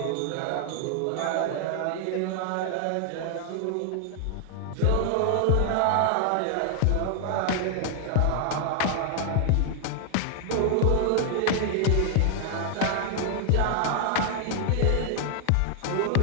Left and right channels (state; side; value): different; both; correlation 0.00